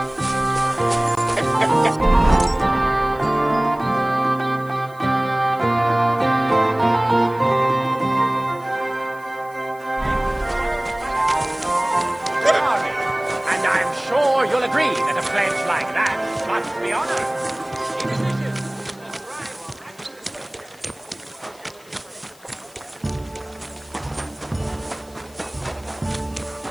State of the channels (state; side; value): noise; left; hiss, 25 dB below the sound